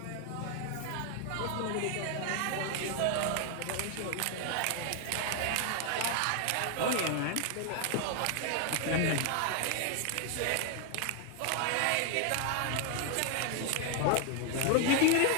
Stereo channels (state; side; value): different; both; correlation 0.00